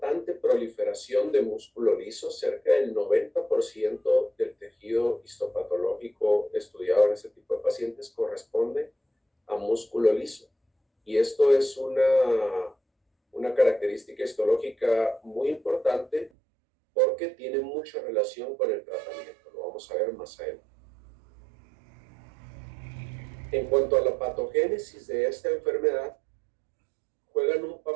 proliferación de músculo liso. Cerca del 90% del tejido histopatológico estudiado en este tipo de pacientes corresponde a músculo liso. Y esto es una característica histológica muy importante porque tiene mucha relación con el tratamiento. Lo vamos a ver más adelante. En cuanto a la patogénesis de esta enfermedad, juegan un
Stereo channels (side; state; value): left; drops out; at 16.3 s